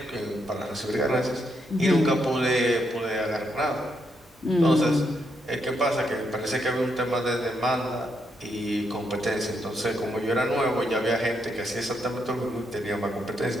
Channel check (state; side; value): normal; both; correlation 0.79